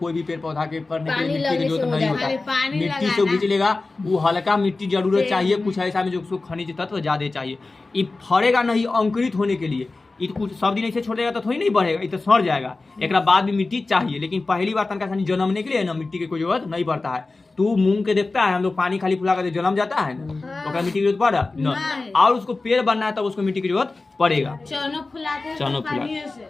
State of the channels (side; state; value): right; quieter; 3.5 dB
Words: भी पेड़ पौधा के करने के लिए मिट्टी की जरूरत नहीं होता। मिट्टी से खींच लेगा, वो हल्का मिट्टी जरूरत चाहिए, कुछ ऐसा में जो उसको खनिज तत्व ज्यादा चाहिए। ये फरेगा नहीं अंकुरित होने के लिए, ये कुछ सब दिन ऐसे छोड़ देगा तो थोड़ी नहीं बढ़ेगा, ये तो सड़ जाएगा। एक बाद भी मिट्टी चाहिए, लेकिन पहली बार तनका जन्मने के लिए ना मिट्टी की कोई जरूरत नहीं पड़ता है। तू मूंग के देखता है, हम लोग पानी खाली फुला कर जन्म जाता है ना, तो मिट्टी की जरूरत पड़ा न, और उसको पेड़ बनना है तब उसको मिट्टी की जरूरत पड़ेगा। चनो फुला,